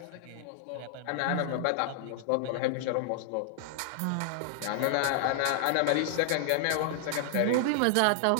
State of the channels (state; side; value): different; both; correlation 0.00